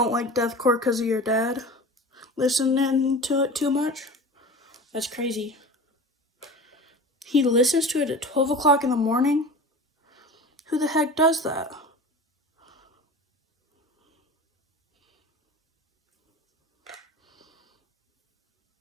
like deathcore because of your dad listening to it too much? That's crazy. He listens to it at 12 o'clock in the morning? Who the heck does that?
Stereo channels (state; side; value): normal; both; correlation 0.36